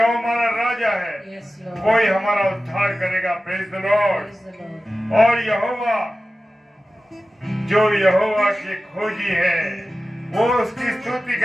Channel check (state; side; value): normal; both; correlation 0.95